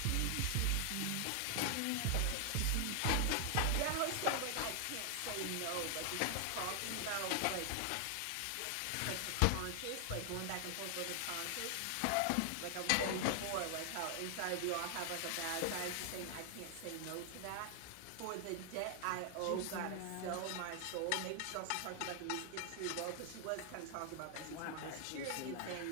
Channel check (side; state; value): both; different; correlation 0.00